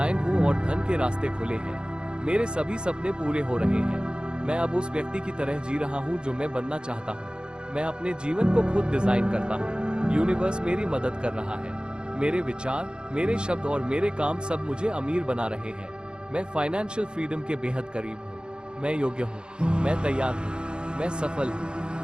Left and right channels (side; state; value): left; late; 0.050 ms